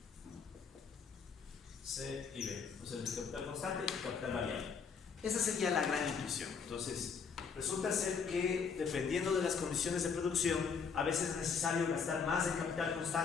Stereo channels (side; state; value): right; quieter; 5.9 dB